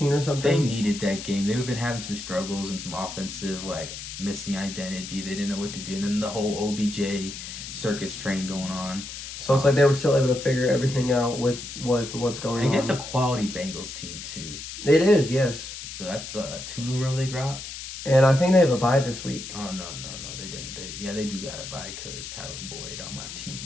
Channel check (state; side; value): noise; left; hiss, 10 dB below the sound